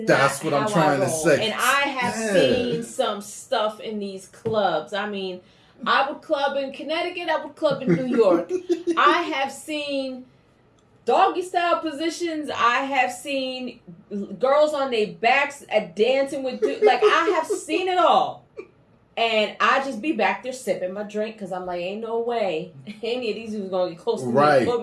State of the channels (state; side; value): identical; both; correlation 1.00